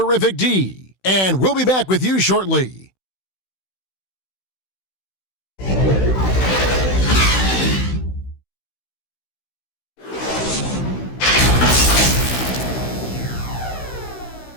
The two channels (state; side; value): late; right; 16 ms